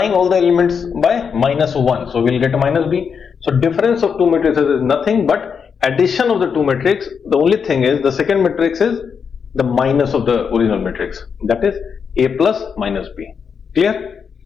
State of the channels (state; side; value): quieter; right; 6.4 dB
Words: all the elements by minus 1. So we will get a minus B. So difference of two matrices is nothing but addition of the two matrix. The only thing is the second matrix is the minus of the original matrix, that is A plus minus B. Clear?